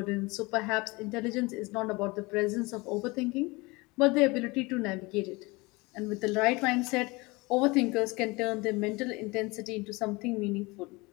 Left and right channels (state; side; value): quieter; right; 24.4 dB